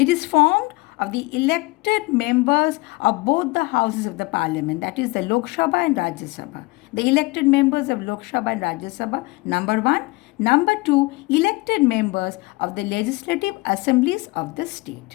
is formed of the elected members of both the houses of the parliament, that is the Lok Sabha and Rajya Sabha. The elected members of Lok Sabha and Rajya Sabha, number 1. Number 2, elected members of the legislative assemblies of the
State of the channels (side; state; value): right; quieter; 23.5 dB